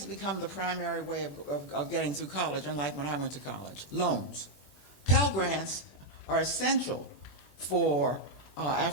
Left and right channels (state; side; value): late; right; 21 ms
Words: become the primary way of getting through college, unlike when I went to college? Loans. Pell Grants are essential for